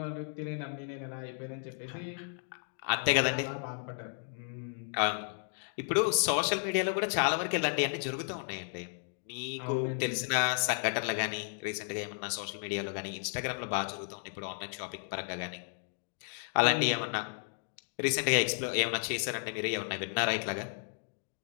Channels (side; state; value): right; silent; 55 dB below the other